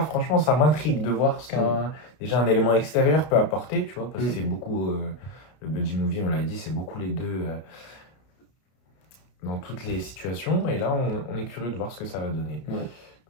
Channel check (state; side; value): late; right; 32 ms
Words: franchement, ça m'intrigue de voir ce déjà un élément extérieur peut apporter, tu vois, parce que c'est beaucoup le buddy movie, on l'a dit, c'est beaucoup les deux dans toutes les situations. Et là, on est curieux de voir ce que ça va donner. Ouais.